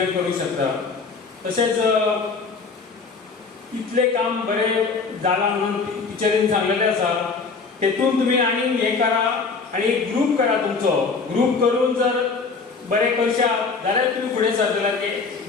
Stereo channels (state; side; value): quieter; right; 4.7 dB